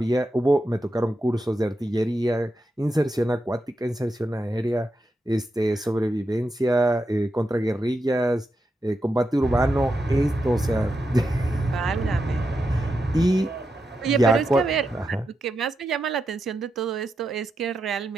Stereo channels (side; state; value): both; normal; correlation 0.87